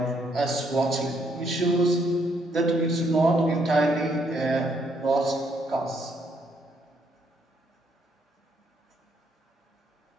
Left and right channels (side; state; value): both; normal; correlation 0.72